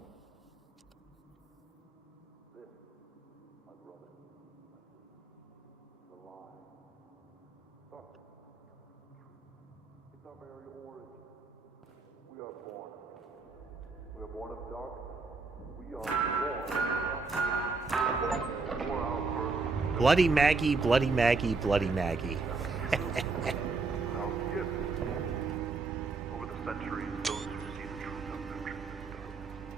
Bloody Maggie, Bloody Maggie, Bloody Maggie. Over the centuries, those who see the truth of their truth is done,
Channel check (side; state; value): left; quieter; 4.0 dB